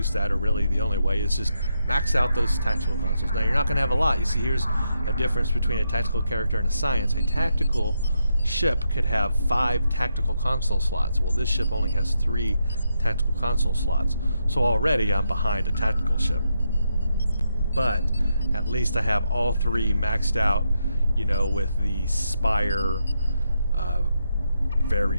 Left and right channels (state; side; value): inverted; both; correlation -0.82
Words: that, or really the only way, is just max out those tactical consoles. Now you're not going to have a lot. You see, here's a difference between a tactical character and a science. A tactical ship could have 5 tactical console slots. Well, this ship only has 3 tactical console slots, so already I'm behind a tactical ship. But at least I have all 3 maxed out, you know, with the Spire,